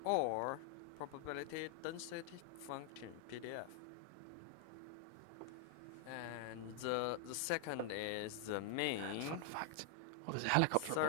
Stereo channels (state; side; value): different; both; correlation 0.00